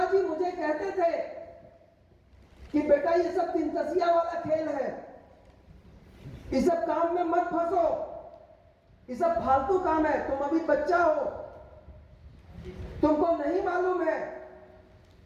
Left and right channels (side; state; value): both; identical; correlation 1.00